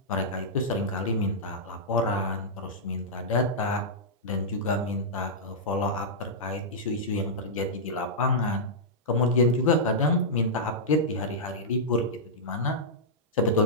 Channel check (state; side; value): normal; both; correlation -0.11